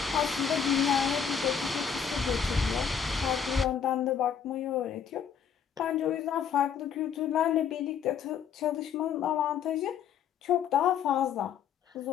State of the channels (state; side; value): quieter; right; 7.6 dB